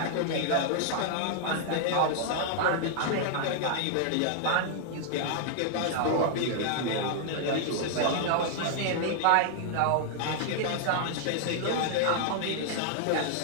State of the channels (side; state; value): both; different; correlation 0.00